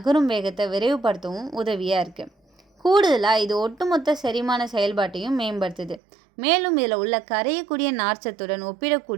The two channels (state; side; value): drops out; left; at 6.0 s